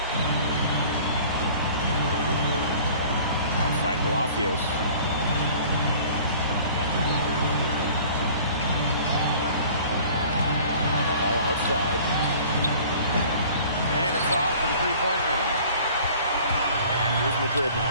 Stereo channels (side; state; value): both; inverted; correlation -0.48